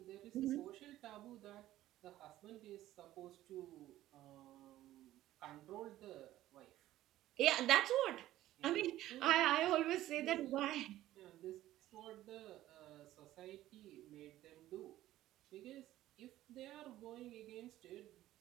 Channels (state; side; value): quieter; left; 14.5 dB